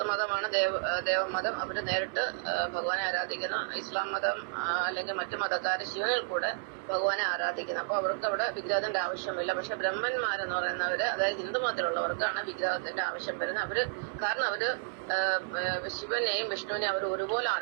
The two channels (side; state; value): left; silent; 57 dB below the other